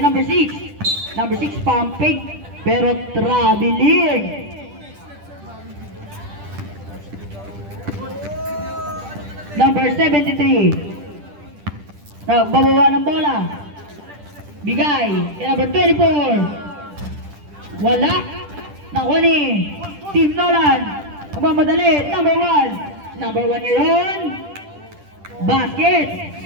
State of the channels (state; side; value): late; left; 10 ms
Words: number 6. Number 6 pumping pero traveling. Number 73. Nagbabawa ng bola. Bigay kay number 24. Wala. Nakuha ni Team Nolan. Magmamadali. Number 1. Number 1 ngayon. Basket.